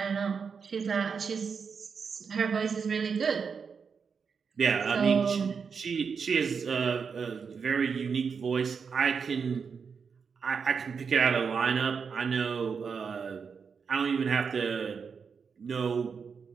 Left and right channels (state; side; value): quieter; left; 5.9 dB